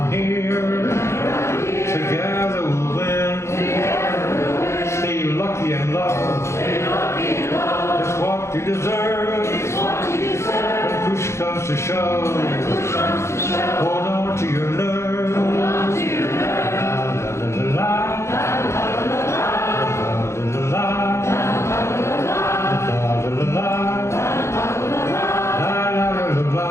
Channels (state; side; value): late; right; 0.13 ms